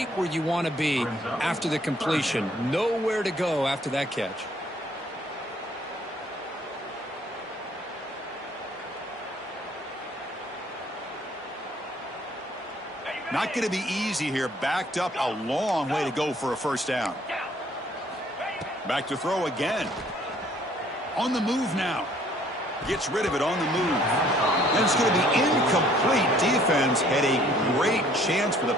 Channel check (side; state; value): both; normal; correlation 0.60